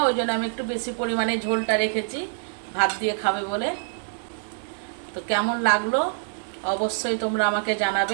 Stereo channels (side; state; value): left; silent; digital silence